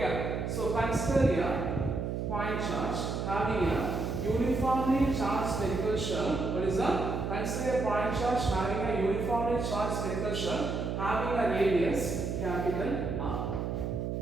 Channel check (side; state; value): right; noise; hum, 2 dB below the sound